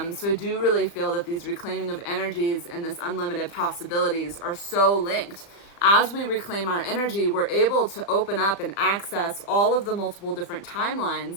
I do really feel that these reclaiming of energies and this unlimited possibilities are so linked. As we reclaim our energy, we're able to open up and access all of the multiple different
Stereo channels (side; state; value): right; late; 36 ms